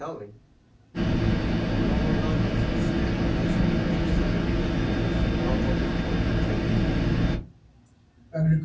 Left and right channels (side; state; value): both; identical; correlation 1.00